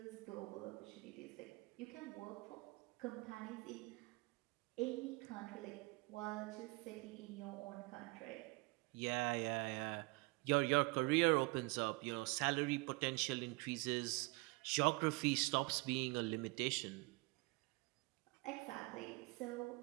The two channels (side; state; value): left; quieter; 26.4 dB